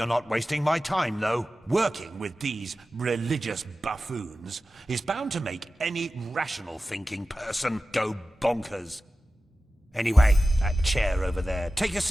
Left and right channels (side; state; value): both; normal; correlation 0.94